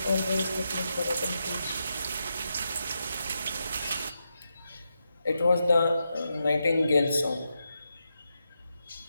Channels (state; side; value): inverted; both; correlation -0.86